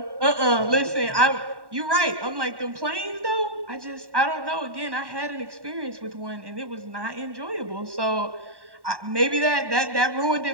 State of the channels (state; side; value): late; left; 1.1 ms